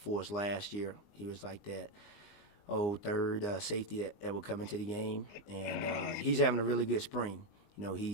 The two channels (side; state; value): right; late; 20 ms